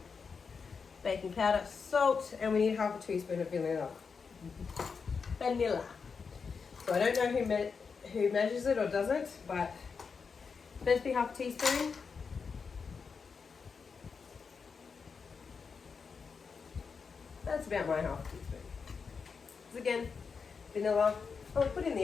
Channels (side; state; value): right; quieter; 5.5 dB